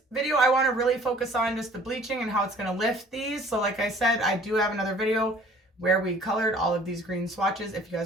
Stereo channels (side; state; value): both; normal; correlation 0.52